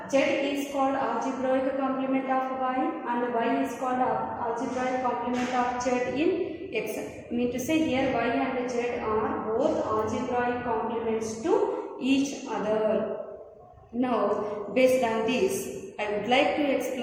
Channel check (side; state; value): both; identical; correlation 1.00